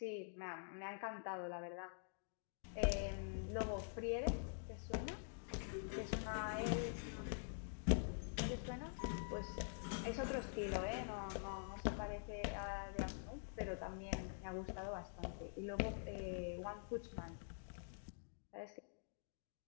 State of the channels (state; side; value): silent; right; digital silence